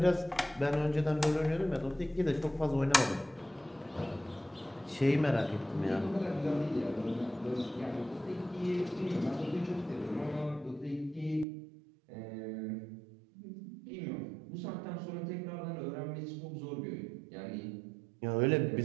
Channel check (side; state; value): left; drops out; at 11.5 s